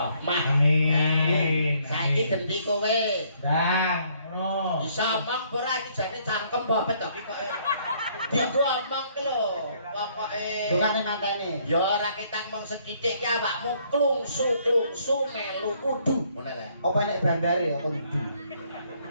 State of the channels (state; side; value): inverted; both; correlation -0.66